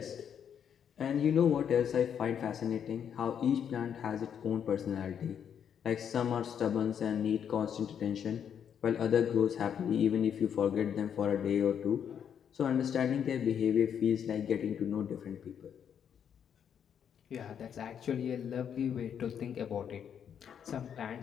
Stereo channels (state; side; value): quieter; right; 8.3 dB